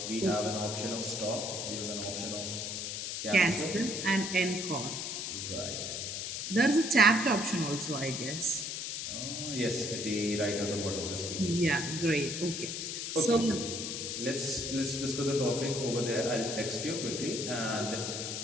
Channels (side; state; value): left; noise; hiss, 4 dB below the sound